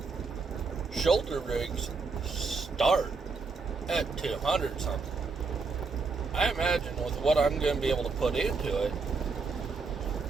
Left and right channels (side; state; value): left; quieter; 4.4 dB